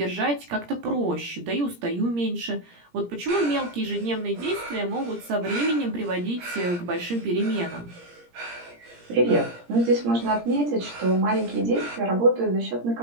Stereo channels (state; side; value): late; left; 17 ms